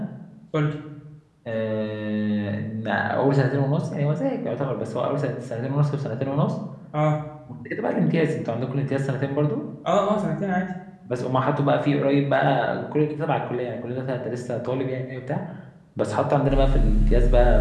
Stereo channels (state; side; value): identical; both; correlation 1.00